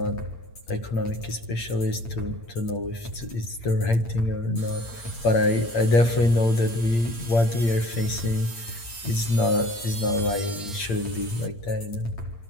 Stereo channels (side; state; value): right; late; 8.7 ms